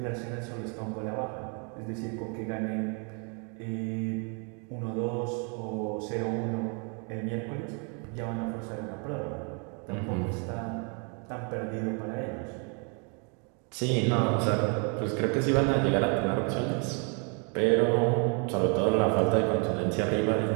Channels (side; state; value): left; quieter; 36.8 dB